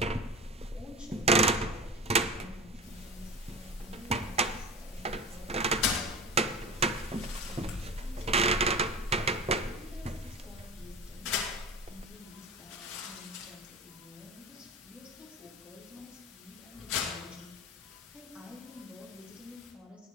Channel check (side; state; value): both; normal; correlation 0.31